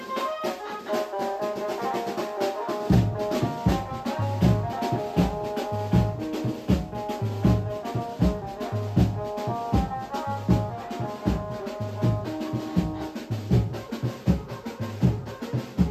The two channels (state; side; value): identical; both; correlation 1.00